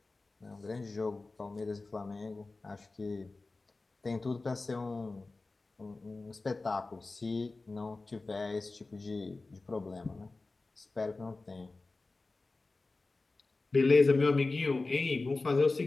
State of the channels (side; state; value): right; quieter; 3.5 dB